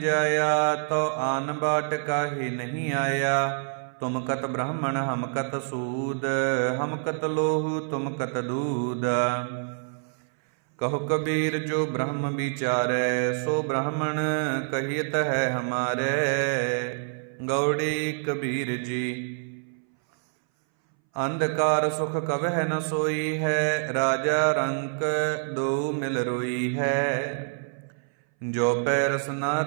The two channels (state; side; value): silent; left; 60 dB below the other